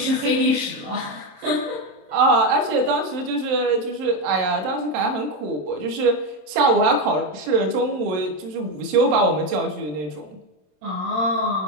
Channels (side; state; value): left; late; 26 ms